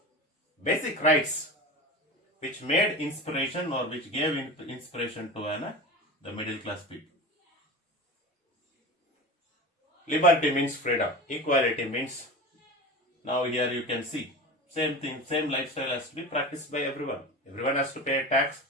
basic rights which made inspiration or which gave inspiration to the middle class people. Liberty means freedom. Equality means, now here you can see, same thing, same lifestyle has to be practiced by everyone. Everyone has to pay a tax.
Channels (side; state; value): both; normal; correlation 0.30